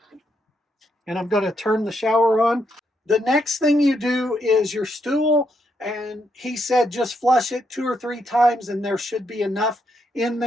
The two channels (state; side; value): normal; both; correlation 0.78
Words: and I'm going to turn the shower on. The next thing you do is your stool, and he said just flush it 2 or 3 times and there should be enough in